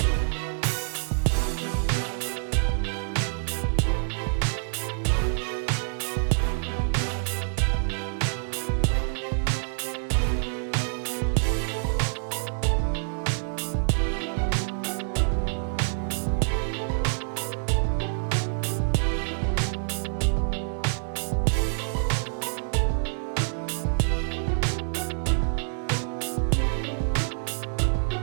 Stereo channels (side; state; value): left; silent; digital silence